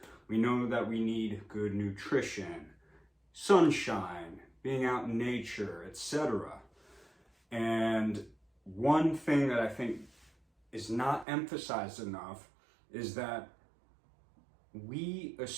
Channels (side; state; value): left; drops out; at 11.2 s